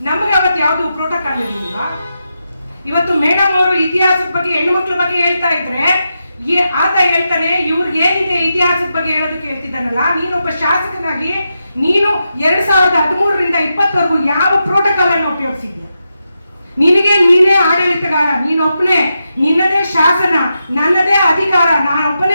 ನಮಗೆ ಅವತ್ತು ಯಾವುದು ಪ್ರೋಟೋಕಾಲ್ ಇರಲಿಲ್ಲ. ಇವತ್ತು ಮೇಡಮ್ ಅವರು ಇತಿಹಾಸದ ಬಗ್ಗೆ ಹೆಣ್ಣು ಮಕ್ಕಳ ಬಗ್ಗೆ ಹೇಳ್ತಾ ಇದ್ರೆ ಆತ ಹೇಳ್ತಾನೆ, ಇವ್ರಿಗೆ ಏನಿದೆ ಇತಿಹಾಸದ ಬಗ್ಗೆ ಹೇಳೋದಕ್ಕೆ ಹೇಳ್ತಿದ್ದಾನಲ್ಲ. ನೀನೊಬ್ಬ ಶಾಸಕನಾಗಿ ನೀನು 2013ರಿಂದ 2020ವರೆಗೂ ಯಾವ ಪ್ರೋಟೋಕಾಲ್ ಅನ್ನು ಉಪಯೋಗಿಸಿದ್ಯ? ನಿನಗೆ ನೀನೇ ಆಡಳಿತಗಾರ, ನೀನೊಬ್ಬನೇ, ನಿನ್ನದೇ ಶಾಸನ, ನನ್ನದೇ ಅಧಿಕಾರ,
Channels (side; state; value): both; inverted; correlation -0.87